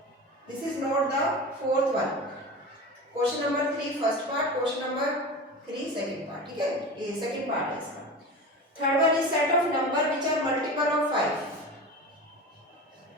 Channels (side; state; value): both; normal; correlation 0.30